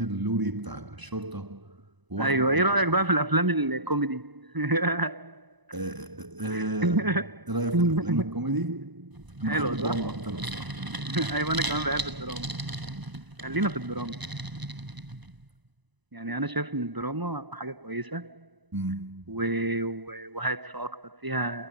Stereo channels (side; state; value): left; late; 1.0 ms